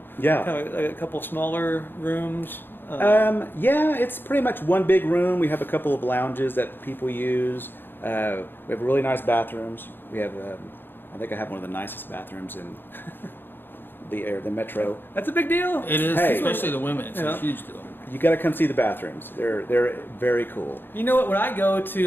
Yeah. Kind of like a couple smaller rooms. Yeah, it's pretty much one big room. We have a couple of lounges that people use. We have really nice bathrooms. We have, I think I have one of the nicest bathrooms in the metro. That's a big deal. It is, Hey. especially the women. It's Yeah. a huge deal. You got to come see the bathrooms. They're very cool. You know what? When I go to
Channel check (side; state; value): right; late; 0.099 ms